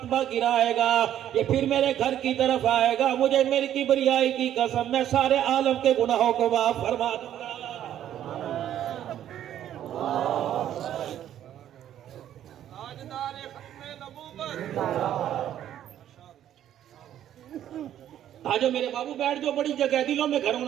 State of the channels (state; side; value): quieter; left; 11.1 dB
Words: گرائے گا، یہ پھر میرے گھر کی طرف آئے گا، مجھے میری کبریائی کی قسم میں سارے عالم کے گناہوں کو معاف فرما دوں گا. آجو میرے بابو بیٹھ جو، بڑی جگہ ہے، دلوں میں گھر